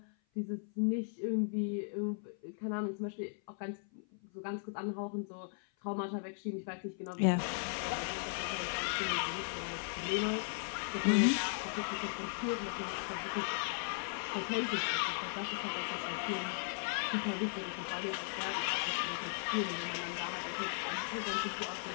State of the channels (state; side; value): silent; right; 53 dB below the other